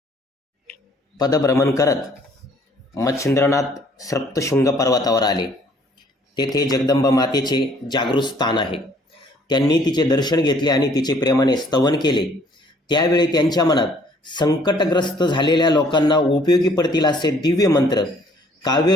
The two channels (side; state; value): both; normal; correlation 0.60